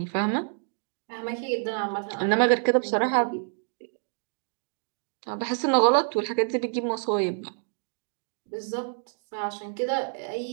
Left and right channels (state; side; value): silent; left; digital silence